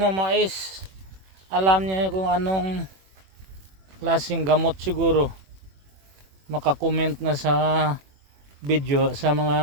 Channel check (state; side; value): late; left; 21 ms